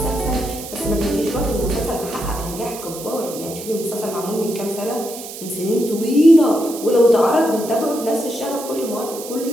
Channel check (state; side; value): noise; right; hiss, 12 dB below the sound